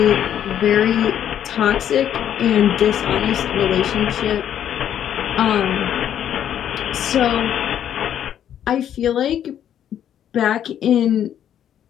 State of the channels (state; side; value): quieter; right; 10.1 dB